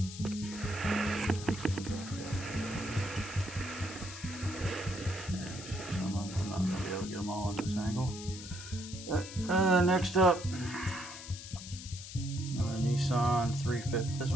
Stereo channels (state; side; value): noise; left; hiss, 12 dB below the sound